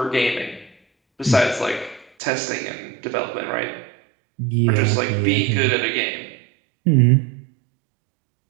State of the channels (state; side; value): drops out; left; at 2.1 s